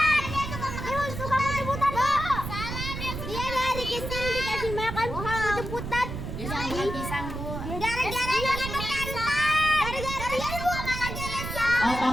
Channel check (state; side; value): noise; right; rumble, 6 dB below the sound